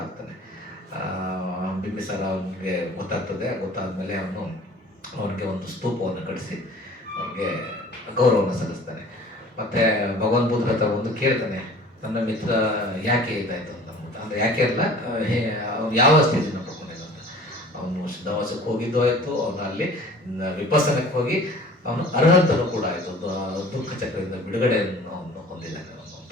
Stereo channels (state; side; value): normal; both; correlation 0.46